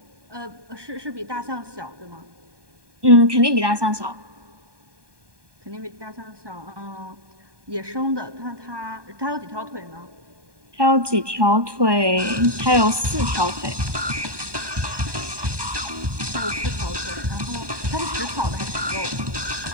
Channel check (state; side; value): late; left; 1.2 ms